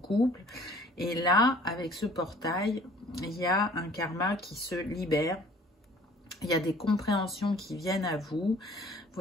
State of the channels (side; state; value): both; normal; correlation 0.53